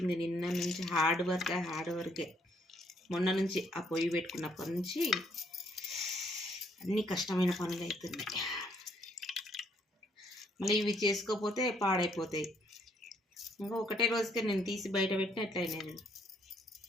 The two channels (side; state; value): both; normal; correlation 0.69